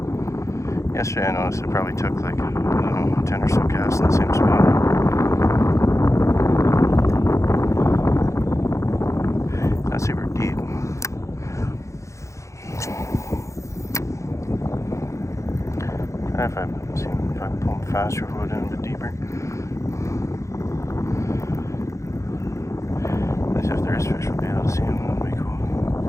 Yesterday I noticed it probably took like, I don't know, 10 or so casts in the same spot. Not super deep. If I pull them faster, we'll go down a bit deeper. At least if there is fish, we'll be able to see them. That'll be cool.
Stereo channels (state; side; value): late; right; 0.15 ms